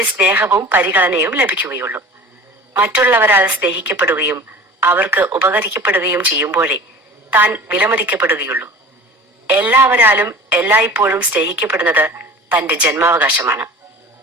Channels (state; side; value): normal; both; correlation 0.40